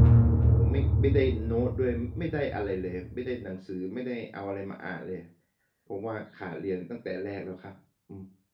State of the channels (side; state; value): both; identical; correlation 1.00